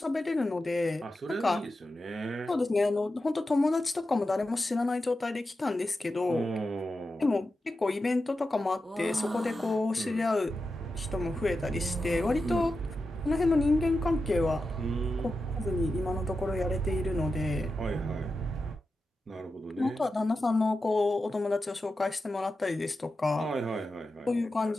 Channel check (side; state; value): both; normal; correlation 0.90